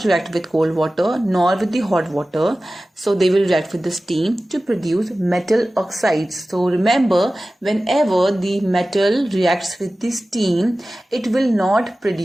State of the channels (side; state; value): both; normal; correlation 0.96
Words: react with cold water nor with the hot water. So they will react with the steam to produce metal oxides. So remember, whenever the metal reacts with the steam, it will not